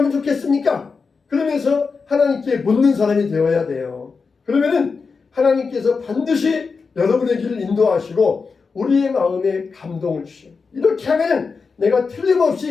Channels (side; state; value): right; quieter; 4.9 dB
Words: 좋겠습니까? 그러면서 하나님께 묻는 사람이 되어야 돼요. 그러면은 하나님께서 반드시 여러분의 길을 인도하시고 우리의 마음에 감동을 주셔요. 이렇게 하면 내가